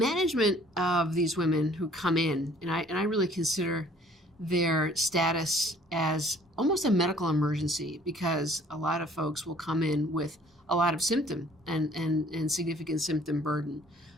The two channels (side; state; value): both; normal; correlation 0.56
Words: of these women who come in, and I really consider their status as almost a medical emergency, because a lot of folks will come in with a lot of symptom and significant symptom burden